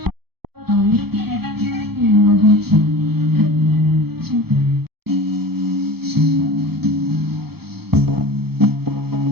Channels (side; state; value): left; late; 0.96 ms